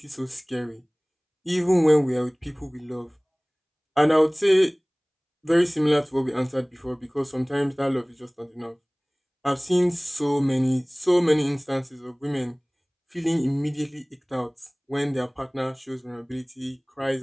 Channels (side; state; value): both; identical; correlation 1.00